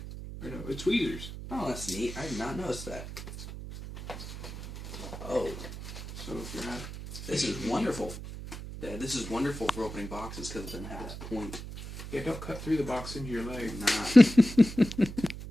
Or no, it's tweezers. Oh, that's neat. I did not notice that. Oh, So if you're not, this is wonderful. Dad, this is wonderful for opening boxes because it doesn't have that point. yeah, don't cut through the box into your leg. Not.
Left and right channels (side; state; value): right; noise; hum, 10 dB below the sound